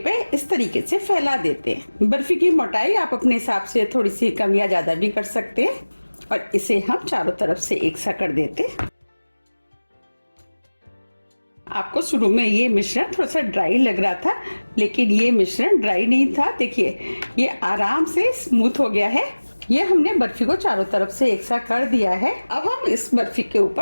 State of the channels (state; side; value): inverted; both; correlation -1.00